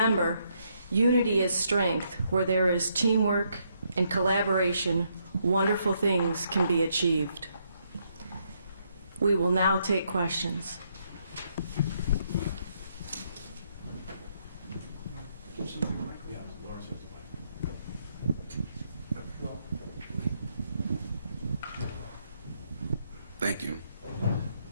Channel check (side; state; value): both; inverted; correlation -0.75